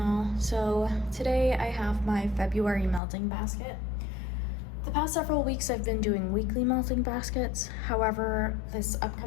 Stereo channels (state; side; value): drops out; right; at 3.0 s